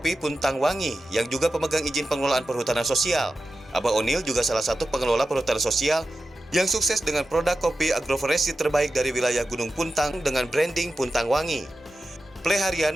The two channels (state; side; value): normal; both; correlation 0.92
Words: Puntang Wangi yang juga pemegang izin pengelolaan perhutanan sosial. Abah Onil juga salah satu pengelola perhutanan sosial yang sukses dengan produk kopi agroforestry terbaik dari wilayah Gunung Puntang dengan branding Puntang Wangi.